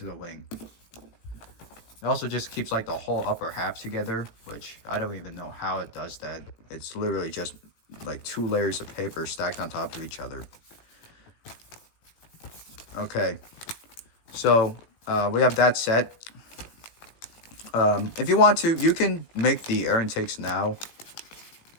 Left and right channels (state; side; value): late; right; 17 ms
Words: the wing. It also just keeps like the whole upper half together, which I don't even know how it does that. It's literally just like 2 layers of paper stacked on top of each other. Okay, so we have that set. If you want to, you can make the air intakes now.